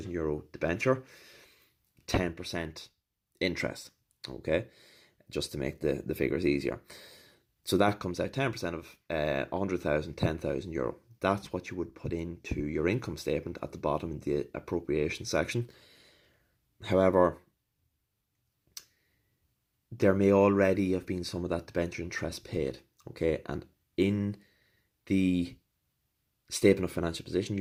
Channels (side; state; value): both; identical; correlation 1.00